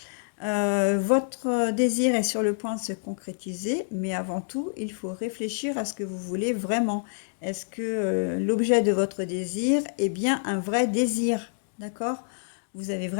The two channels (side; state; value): right; silent; digital silence